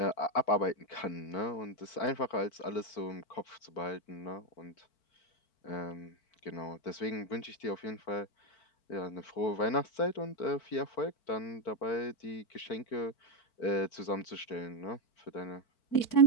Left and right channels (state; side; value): late; right; 4.5 ms